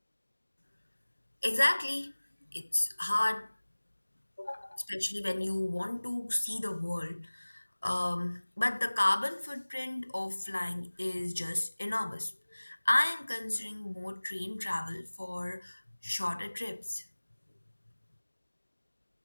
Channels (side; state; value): both; inverted; correlation -1.00